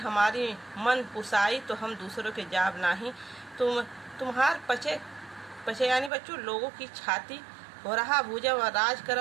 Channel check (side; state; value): left; drops out; at 6.1 s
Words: मन पुसाई तो हम दूसरों के जाब नहीं। तुम्हार पचे यानी बच्चों लोगों की छाती हो रहा भूजा व राज